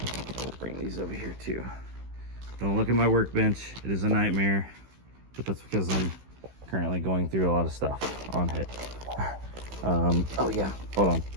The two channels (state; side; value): late; left; 16 ms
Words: bring these over here too. Don't look at my workbench, it is a nightmare, but that's because I'm currently going through a lot of stuff on it. Oh yeah, hold on.